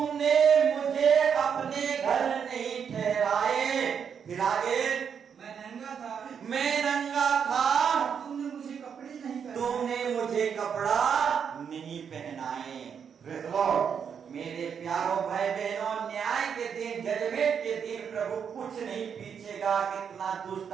Praise the Lord. मेरे प्यारों भाई बहनों, न्याय के दिन, जजमेंट के दिन प्रभु कुछ नहीं पूछेगा कितना दुष्ट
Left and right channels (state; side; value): quieter; left; 7.2 dB